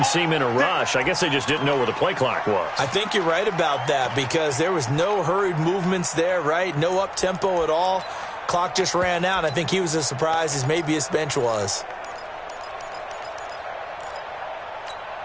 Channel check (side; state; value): both; identical; correlation 1.00